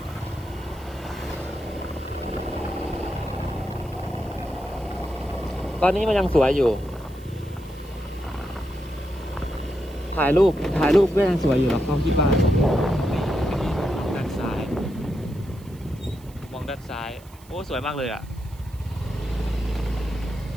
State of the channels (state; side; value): noise; right; hiss, 25 dB below the sound